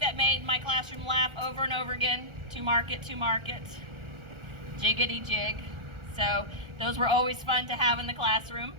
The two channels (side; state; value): left; late; 1.4 ms